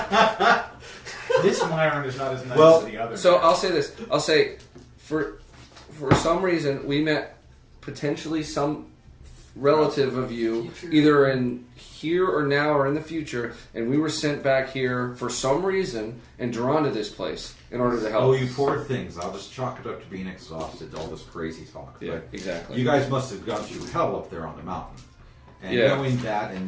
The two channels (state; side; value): identical; both; correlation 1.00